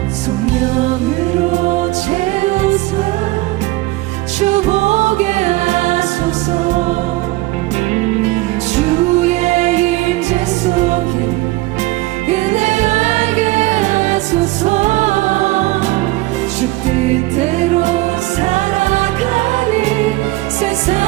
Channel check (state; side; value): quieter; left; 19.5 dB